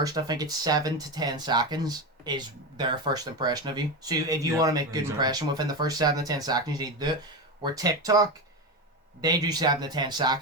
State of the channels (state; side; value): normal; both; correlation 0.17